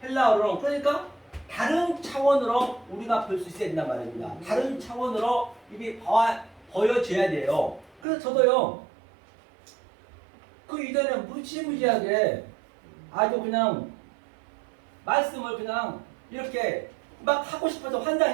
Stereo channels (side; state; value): left; drops out; at 8.0 s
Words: 헬라어로 그러니까 다른 차원으로 우리가 볼 수 있어야 된단 말입니다. 다른 차원으로 이게 보여져야 돼요. 그래서 저도요 그 이전에 무지무지하게 아주 그냥 말씀을 그냥 이렇게 막 하고 싶어서